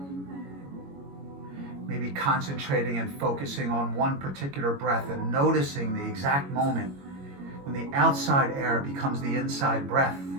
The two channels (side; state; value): left; late; 22 ms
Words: Maybe concentrating and focusing on one particular breath and noticing the exact moment when the outside air becomes the inside breath.